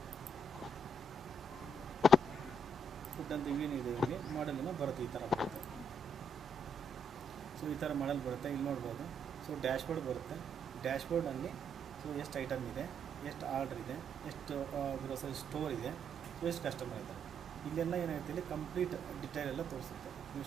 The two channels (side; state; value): both; normal; correlation 0.74